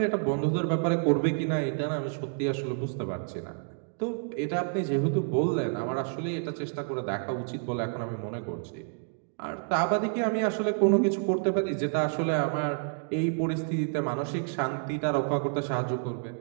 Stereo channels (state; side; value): silent; left; 59 dB below the other